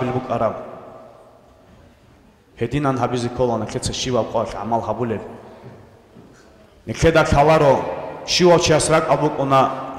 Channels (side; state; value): both; identical; correlation 1.00